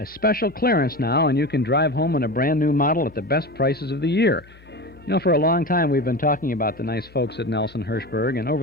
special clearance now, and you can drive home in a brand-new model at the best prices of the year. You know, for a long time we've been talking about the nice folks at Nelson Hirschberg, and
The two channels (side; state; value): both; normal; correlation 0.27